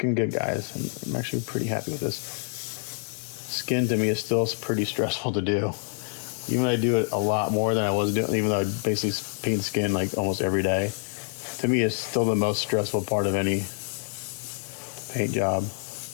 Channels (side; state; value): right; silent; digital silence